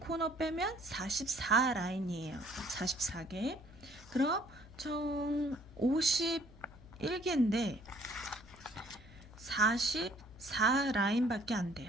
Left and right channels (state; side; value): noise; left; hum, 19 dB below the sound